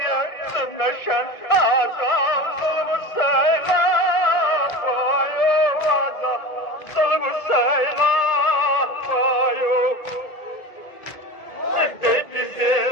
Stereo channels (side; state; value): right; late; 1.7 ms